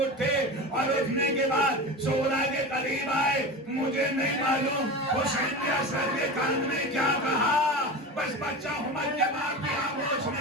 اٹھے اور اٹھنے کے بعد سغرا کے قریب آئے. مجھے نہیں معلوم حسین نے اصغر کے کان میں کیا کہا, بس بچہ ہمت کے ماں کی آغوش میں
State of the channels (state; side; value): normal; both; correlation 0.28